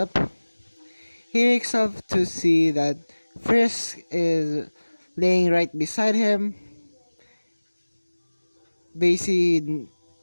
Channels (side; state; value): both; inverted; correlation -1.00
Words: He wakes up to see that Frisk is laying right beside him. Basically,